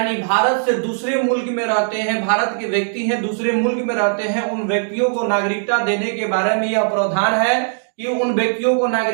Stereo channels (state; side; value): silent; left; digital silence